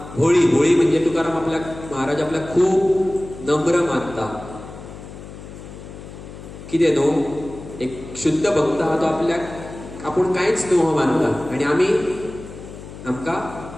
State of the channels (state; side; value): noise; left; hum, 14 dB below the sound